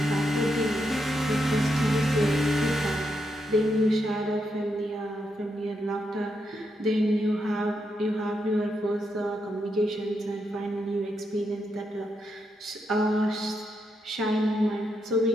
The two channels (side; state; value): both; normal; correlation 0.82